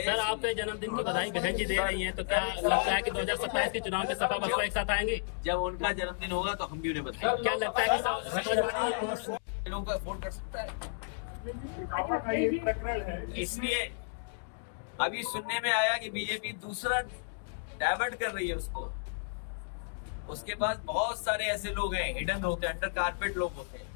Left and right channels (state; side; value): silent; right; digital silence